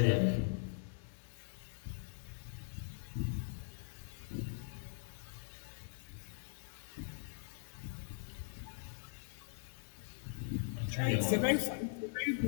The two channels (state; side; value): silent; right; digital silence